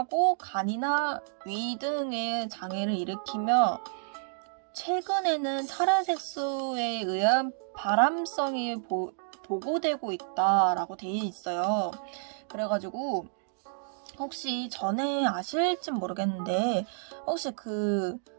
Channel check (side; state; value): left; silent; digital silence